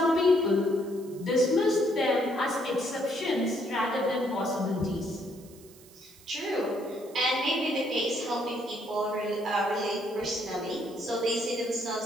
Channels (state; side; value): noise; right; hiss, 23 dB below the sound